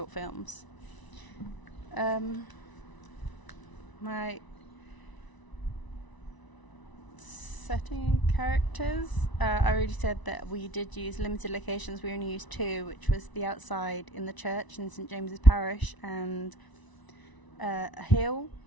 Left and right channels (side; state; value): right; late; 1.0 ms